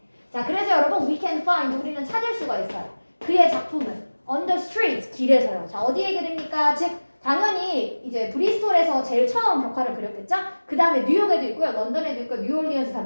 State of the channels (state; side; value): inverted; both; correlation -1.00